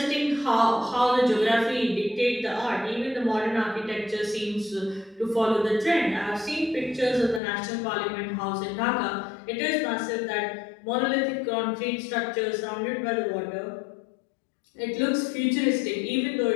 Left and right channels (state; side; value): drops out; right; at 7.4 s